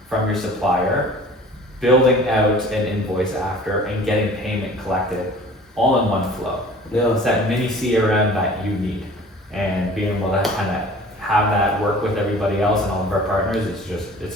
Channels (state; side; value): normal; both; correlation 0.46